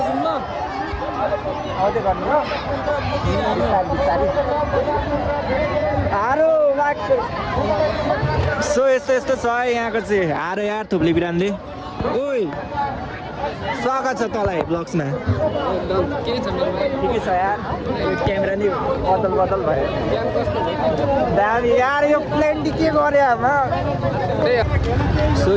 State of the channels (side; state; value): both; identical; correlation 1.00